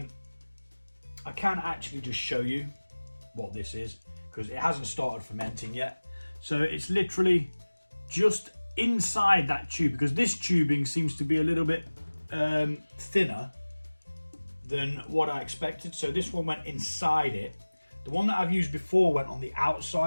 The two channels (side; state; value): both; inverted; correlation -1.00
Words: can actually just show you what this is, because it hasn't started fermenting yet. So it's literally just inside that tube, because this tubing seems to be a little bit thinner than what I expected. So this one went inside it. The one that I've used before went on the